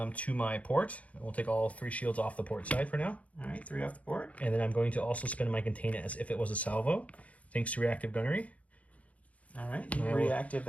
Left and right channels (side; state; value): right; late; 0.067 ms